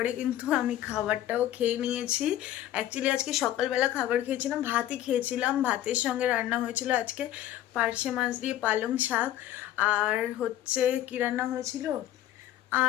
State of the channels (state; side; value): quieter; right; 12.9 dB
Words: কিন্তু আমি খাবারটাও খেয়ে নিয়েছি। অ্যাকচুয়ালি আজকে সকালবেলা খাবার খেয়েছিলাম, ভাতই খেয়েছিলাম। ভাতের সঙ্গে রান্না হয়েছিল আজকে পার্শে মাছ দিয়ে পালং শাক, আর হচ্ছে কি রান্না হয়েছিল,